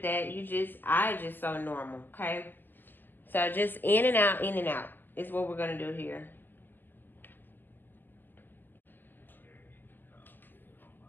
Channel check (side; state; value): right; late; 0.094 ms